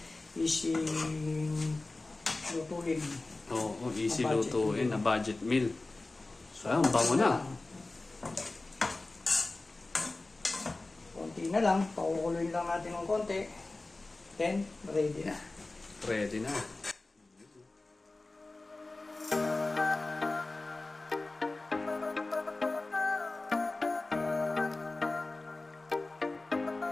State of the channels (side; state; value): right; quieter; 3.2 dB